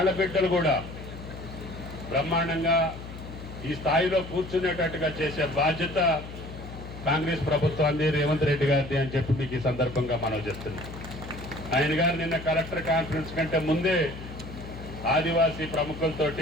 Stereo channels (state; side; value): noise; left; hum, 12 dB below the sound